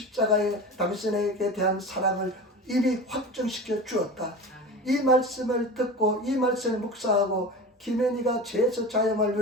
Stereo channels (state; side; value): normal; both; correlation 0.30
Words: 당신에게 대한 사랑을 이미 확정시켜 주었다. 이 말씀을 듣고 이 말씀을 묵상하고 김현희가 죄에서 자유함을